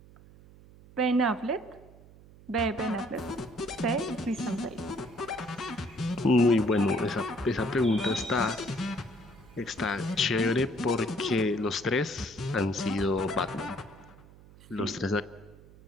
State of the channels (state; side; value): noise; right; hum, 22 dB below the sound